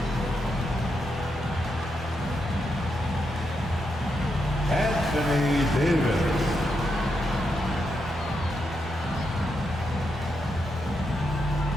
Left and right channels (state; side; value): normal; both; correlation 0.83